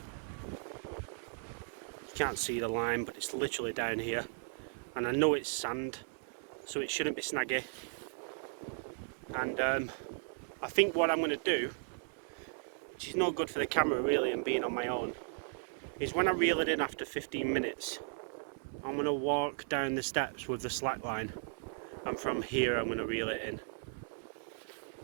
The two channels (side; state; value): left; silent; 54 dB below the other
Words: You can't see the line, but it's literally down here, and I know it's sand, so it shouldn't be snaggy. And I think what I'm going to do, which is no good for the camera really and being on my own, is when I reel it in after 15 minutes, I'm going to walk down the steps with the slack line, and from here I'm going to reel it in.